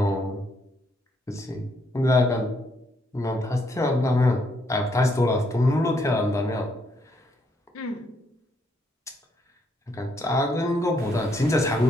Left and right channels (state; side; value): normal; both; correlation 0.74